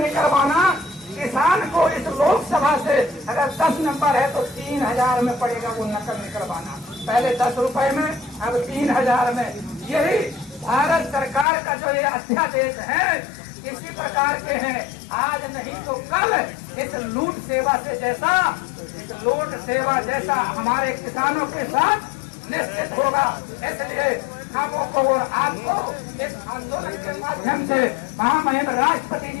किसान को इस लोकसभा से अगर 10 नंबर है तो 3,000 में पड़ेगा वो नकल निकलवाना। पहले 10 रुपए में, अब 3,000 में। यही भारत सरकार का जो ये अध्यादेश है इसी प्रकार के हैं। आज नहीं तो कल इस लूट सेवा जैसा हमारे किसानों के साथ निश्चित होगा। इसलिए खामों को और आपको इस आंदोलन के माध्यम से महामहिम राष्ट्रपति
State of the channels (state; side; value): drops out; right; at 11.5 s